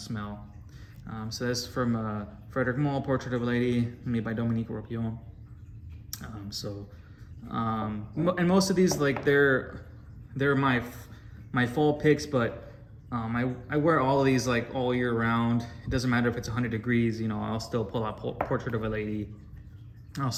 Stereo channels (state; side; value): identical; both; correlation 1.00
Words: So that's from Frederic Malle, Portrait of a Lady, made by Dominique Ropion. And most of these, like, they're my fall picks, but I wear all of these like all year round. It doesn't matter if it's 100 degrees. You know, I'll still pull out Portrait of a Lady. I'll